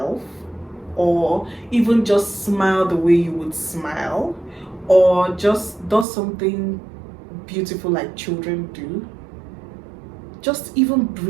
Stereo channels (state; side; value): drops out; left; at 6.1 s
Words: or even just smile the way you would smile, or just does something beautiful like children do. Just even